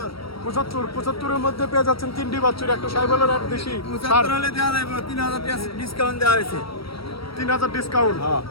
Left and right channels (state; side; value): late; right; 0.75 ms